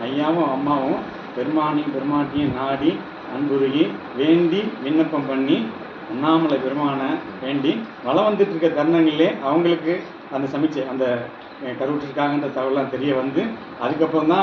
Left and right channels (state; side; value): identical; both; correlation 1.00